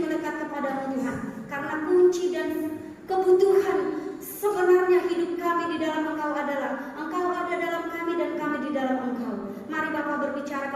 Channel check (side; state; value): both; identical; correlation 1.00